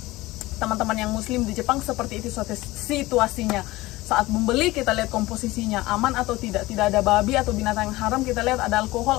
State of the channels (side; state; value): right; quieter; 19.3 dB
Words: teman-teman yang muslim di Jepang, seperti itu situasinya. Saat membeli kita lihat komposisinya aman atau tidak ada babi atau binatang yang haram, kita lihat ada